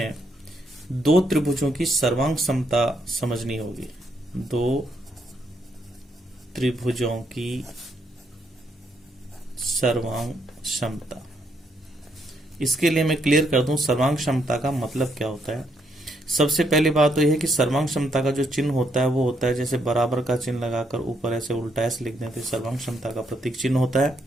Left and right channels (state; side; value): normal; both; correlation 0.75